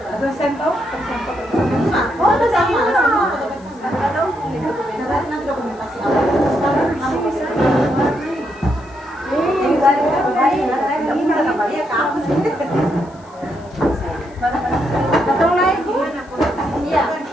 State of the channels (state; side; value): noise; left; hiss, 29 dB below the sound